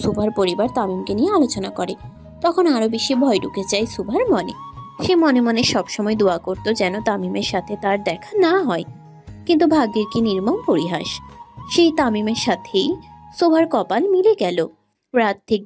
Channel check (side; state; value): both; identical; correlation 1.00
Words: সুভার পরিবার তামিমকে নিয়ে আলোচনা করে। তখন আরো বেশি ভয় ঢুকে যায় সুভার মনে। সে মনে মনে সবসময় দোয়া করত যেন তামিমের সাথে তার দেখা না হয়। কিন্তু ভাগ্যের কি নির্মম পরিহাস, সেই তামিমের সাথেই সুভার কপাল মিলে গেল। রাত ঠিক